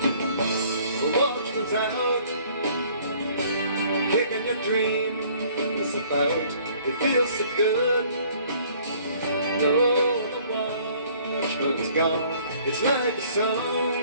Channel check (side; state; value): both; inverted; correlation -0.57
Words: The watchman's out, kicking your dreams about. It feels so good, knowing the watchman's gone. It's like a